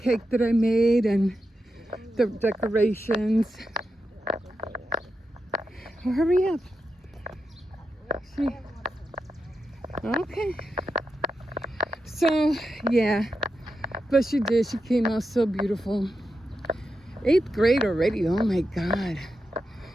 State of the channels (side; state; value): both; normal; correlation 0.88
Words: that I made and the decorations. Oh, hurry up. Okay. So, yeah. But she did. She came out so beautiful. 8th grade already. Oh, my God.